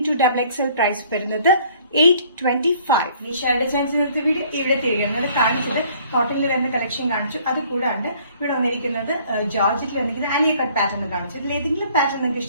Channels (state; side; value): inverted; both; correlation -0.57